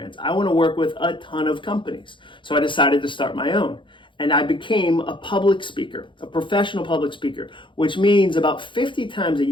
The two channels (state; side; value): late; right; 0.24 ms